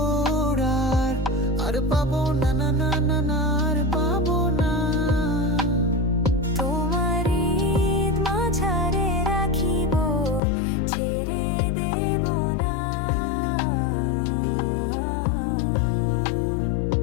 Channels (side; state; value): right; drops out; at 10.4 s